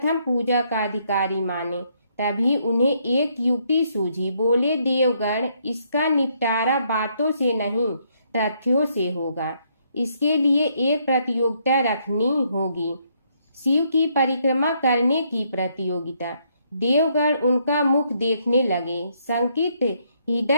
पूजा का अधिकारी माने। तभी उन्हें एक युक्ति सूझी। बोले, देवगण, इसका निपटारा बातों से नहीं तथ्यों से होगा। इसके लिए एक प्रतियोगिता रखनी होगी, शिव की परिक्रमा करने की प्रतियोगिता। देवगण उनका मुख देखने लगे, शंकित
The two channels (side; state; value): both; inverted; correlation -0.72